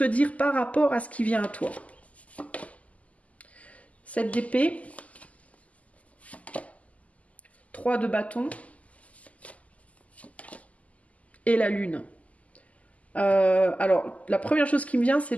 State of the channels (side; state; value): right; late; 0.070 ms